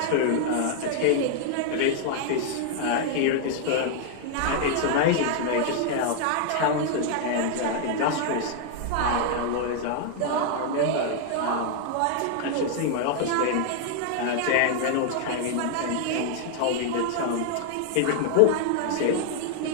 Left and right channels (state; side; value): different; both; correlation 0.00